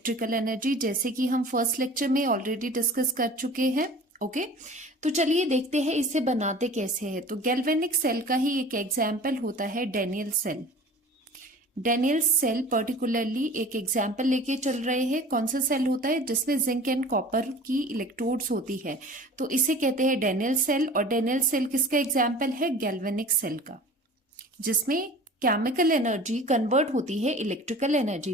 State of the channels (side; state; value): both; normal; correlation 0.41